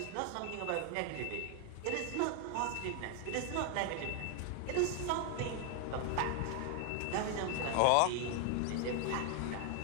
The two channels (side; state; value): both; different; correlation 0.00